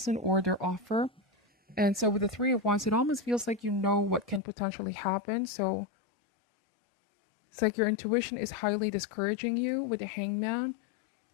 or their offer. And so with the Three of Wands, it almost feels like you know what can potentially happen. So it's like your intuition is highly discouraging you with the Hangman.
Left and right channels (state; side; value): drops out; right; at 4.4 s